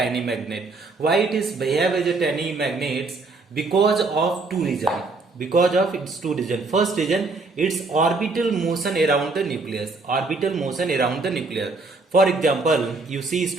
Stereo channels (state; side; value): quieter; left; 3.7 dB